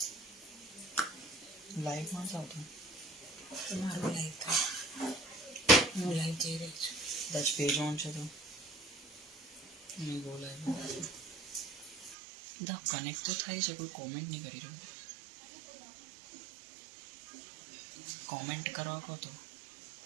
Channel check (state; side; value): drops out; left; at 12.2 s